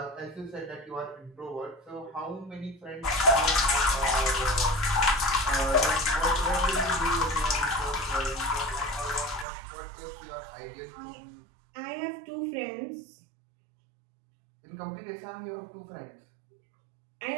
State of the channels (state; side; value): drops out; left; at 9.5 s